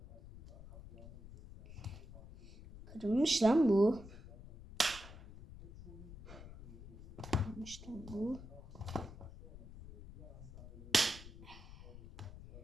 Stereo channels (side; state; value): left; noise; rumble, 15 dB below the sound